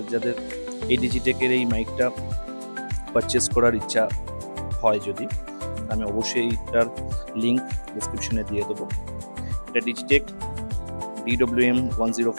যাদের এই ডিজিটেকের এই মাইকটা পারচেস করার ইচ্ছা হয় যদি, আমি অবশ্যই এইটার লিঙ্ক ডিসক্রিপশনে দিয়ে দেবো। এটা ডিজিটেক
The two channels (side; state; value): both; inverted; correlation -1.00